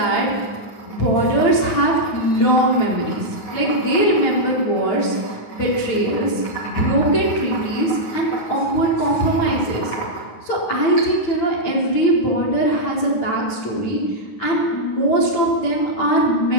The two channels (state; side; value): late; right; 9.6 ms